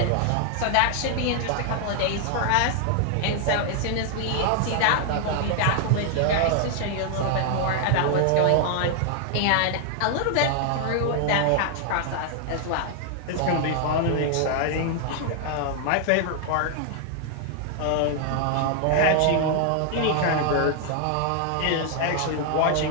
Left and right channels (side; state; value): both; different; correlation 0.00